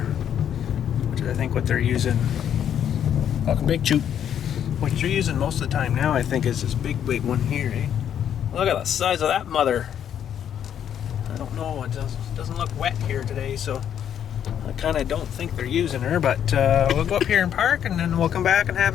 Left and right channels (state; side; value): quieter; right; 9.4 dB